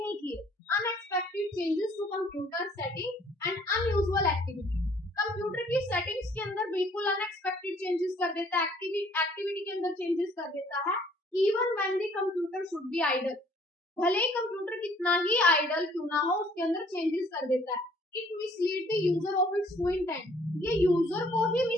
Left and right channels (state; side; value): normal; both; correlation 0.60